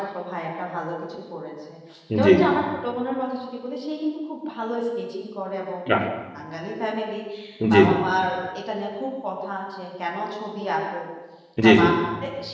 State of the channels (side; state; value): both; identical; correlation 1.00